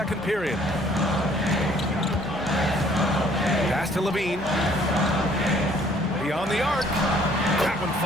period. Pass to Levine. Beyond the arc. That one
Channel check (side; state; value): both; normal; correlation 0.60